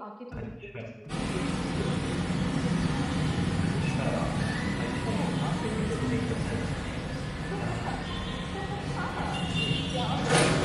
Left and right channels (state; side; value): identical; both; correlation 1.00